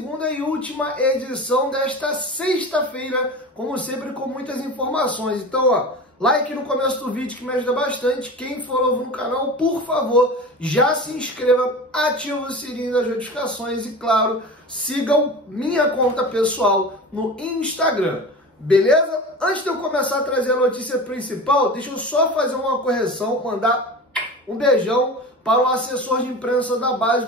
e última edição desta sexta-feira, como sempre, com muitas informações. Então, ó, like no começo do vídeo que me ajuda bastante. Quem for novo no canal, por favor, já se inscreva, ative o sininho das notificações e, claro, sigam minha conta pessoal no Instagram. Beleza? Antes de eu começar a trazer a notícia principal, deixa eu só fazer uma correção, mandar um beijão para o assessor de imprensa da base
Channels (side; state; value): both; normal; correlation 0.32